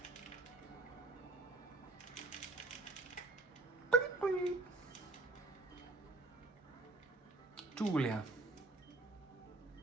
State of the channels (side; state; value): left; quieter; 3.1 dB